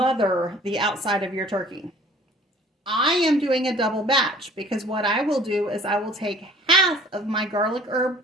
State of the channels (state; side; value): normal; both; correlation 0.52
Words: the outside of your turkey. I am doing a double batch because what I will do is I will take half of my garlic herb